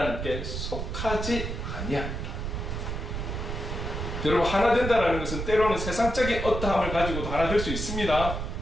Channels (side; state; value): right; noise; rumble, 4 dB below the sound